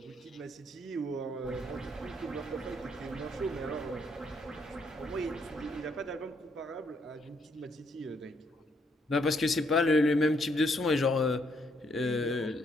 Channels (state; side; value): normal; both; correlation 0.72